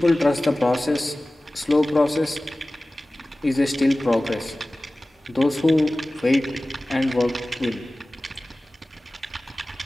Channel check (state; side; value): normal; both; correlation 0.97